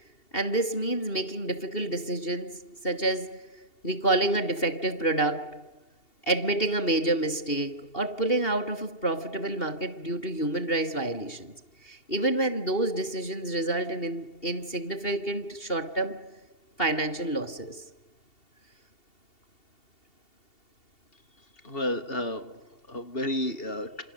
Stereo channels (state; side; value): late; right; 2.7 ms